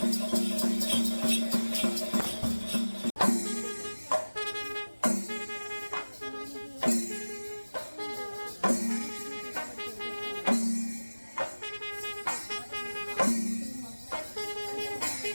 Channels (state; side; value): inverted; both; correlation -1.00